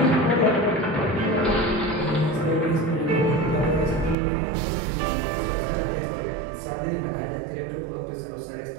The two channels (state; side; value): drops out; left; at 4.2 s